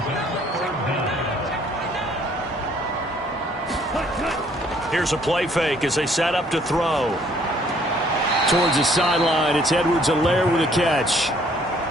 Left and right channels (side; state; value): both; normal; correlation 0.62